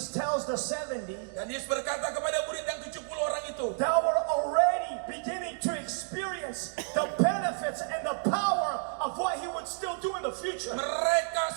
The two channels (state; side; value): silent; left; 57 dB below the other